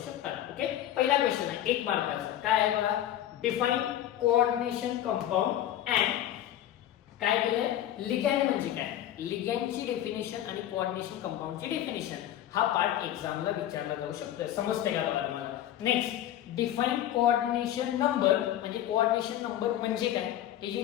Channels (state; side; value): quieter; right; 12.1 dB